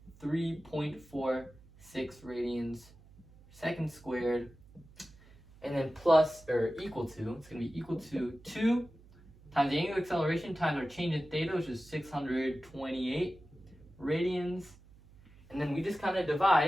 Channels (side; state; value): right; noise; hum, 24 dB below the sound